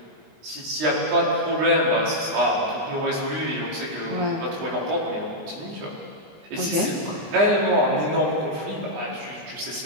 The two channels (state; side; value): late; left; 20 ms